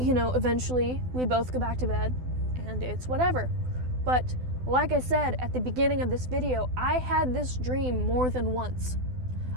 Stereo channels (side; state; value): left; late; 12 ms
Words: we both go back to bed and it's whatever. But like I said at the beginning of this video, I had this dream more than once.